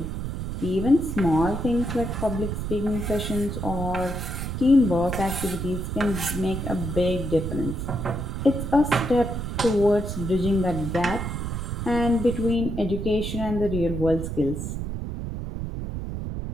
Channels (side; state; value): right; noise; rumble, 4 dB below the sound